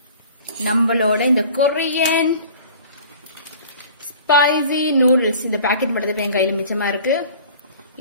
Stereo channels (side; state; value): both; inverted; correlation -0.46